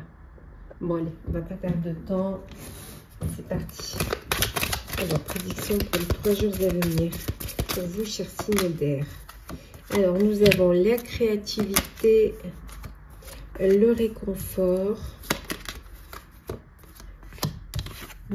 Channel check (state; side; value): identical; both; correlation 1.00